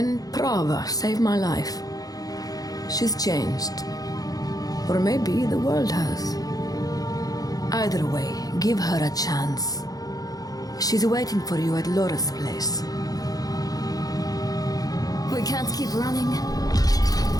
Prava saved my life. She's changed. Or maybe the world has. Either way, give her a chance. She's waiting for you at Lorath's place. We can't keep running.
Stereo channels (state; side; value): late; right; 0.18 ms